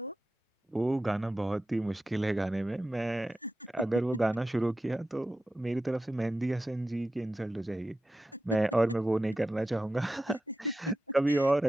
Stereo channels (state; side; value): normal; both; correlation 0.91